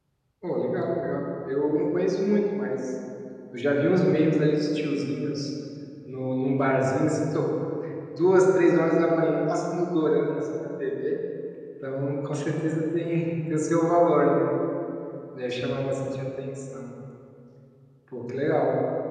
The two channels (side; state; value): both; identical; correlation 1.00